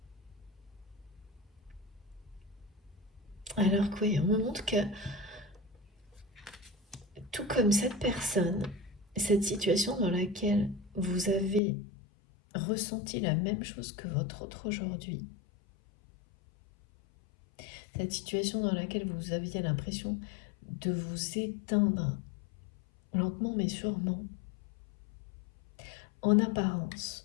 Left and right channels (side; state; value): right; drops out; at 11.6 s